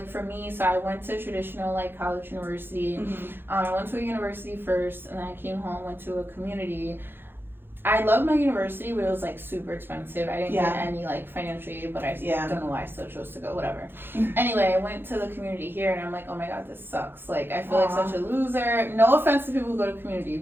for me, so I went to traditional like college university. I went to a university first, and then I came home, went to a community. I loved my university, but it was like super expensive. I didn't get any like financial aid, but I don't know why I still chose to go, whatever. Anyway, I went to the community here, and I'm like, oh my god, this sucks. Like, I feel like such a loser. No offense to people who go to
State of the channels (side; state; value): left; late; 0.10 ms